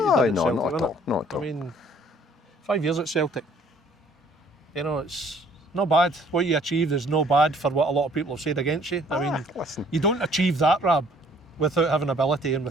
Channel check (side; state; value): both; normal; correlation 0.58